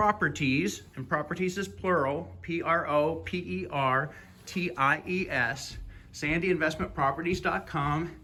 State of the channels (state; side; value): identical; both; correlation 1.00